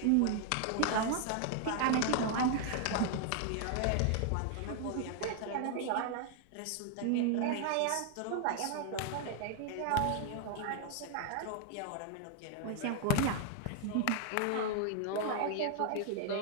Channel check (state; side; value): different; both; correlation 0.00